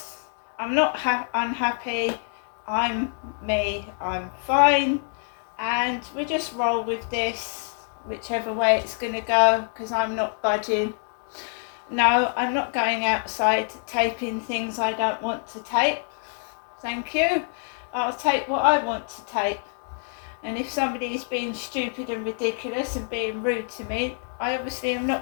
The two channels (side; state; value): right; silent; 61 dB below the other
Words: I'm not unhappy. I'm me, I'm fine, and we just roll with this, whichever way it's going to go, because I'm not budging. No, I'm not going outside taping things I don't want to tape. Thank you. I'll tape what I want to tape. And if somebody is being stupid and ridiculous and being rude to me, I obviously am